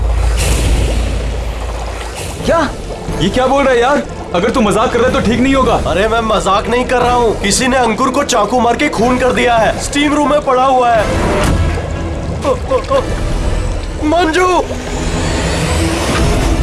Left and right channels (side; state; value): both; identical; correlation 1.00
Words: क्या? ये क्या बोल रहा है यार? अगर तू मजाक कर रहा है तो ठीक नहीं होगा। अरे मैं मजाक नहीं कर रहा हूँ, किसी ने अंकुर को चाकू मार के खून कर दिया है, स्टीम रूम में पड़ा हुआ है। मंजू,